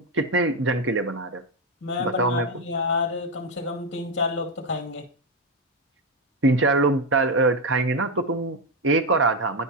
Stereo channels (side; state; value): both; normal; correlation 0.08